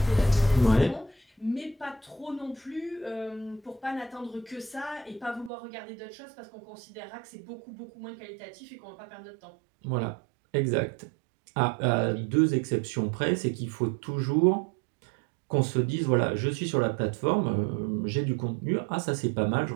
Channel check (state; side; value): drops out; left; at 5.5 s